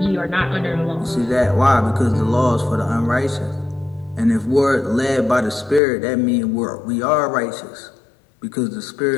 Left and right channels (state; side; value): drops out; right; at 5.8 s